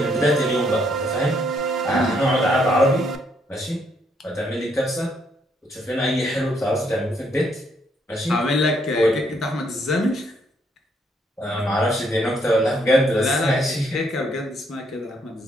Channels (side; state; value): both; normal; correlation 0.71